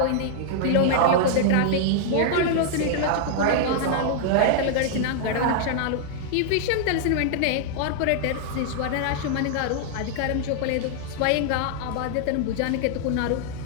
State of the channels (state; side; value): different; both; correlation -0.01